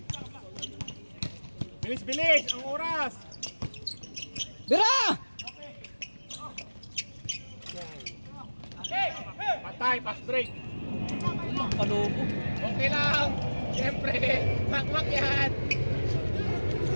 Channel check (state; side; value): inverted; both; correlation -1.00